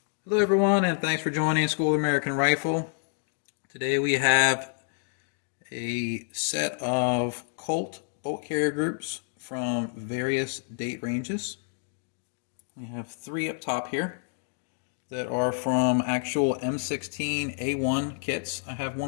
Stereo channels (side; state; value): right; silent; digital silence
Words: Hello everyone, and thanks for joining School of American Rifle. Today we have a set of Colt bolt carrier groups from various date ranges. We have three up top here that are from actual M16A1 kits. I have